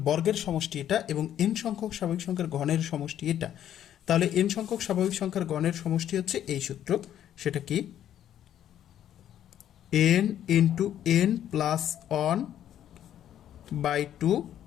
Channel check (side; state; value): right; quieter; 10.8 dB